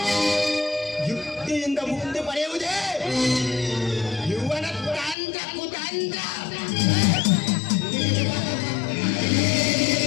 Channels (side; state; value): right; drops out; at 5.2 s